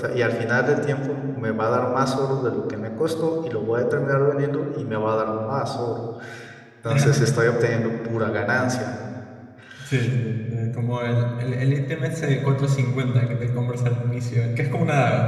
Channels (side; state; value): both; identical; correlation 1.00